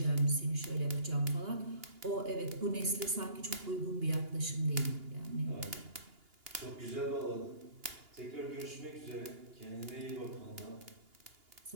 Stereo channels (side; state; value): left; late; 2.8 ms